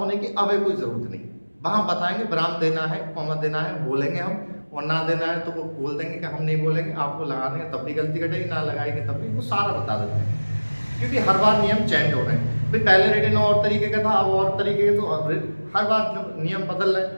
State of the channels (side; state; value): both; inverted; correlation -1.00